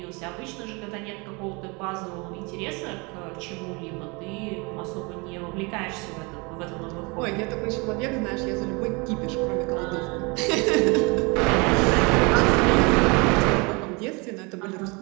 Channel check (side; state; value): left; quieter; 28.6 dB